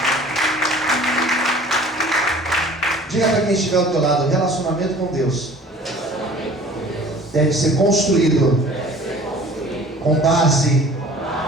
Diga para quem estiver ao teu lado: o relacionamento com Deus deve ser construído com base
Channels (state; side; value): normal; both; correlation 0.47